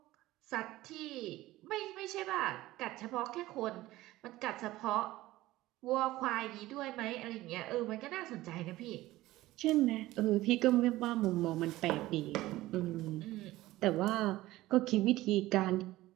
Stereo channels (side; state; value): left; quieter; 17.1 dB